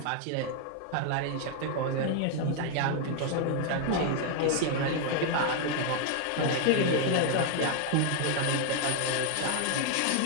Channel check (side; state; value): both; different; correlation 0.00